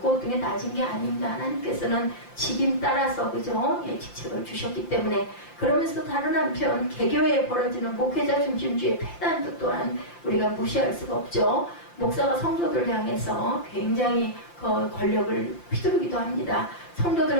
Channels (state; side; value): late; right; 5.8 ms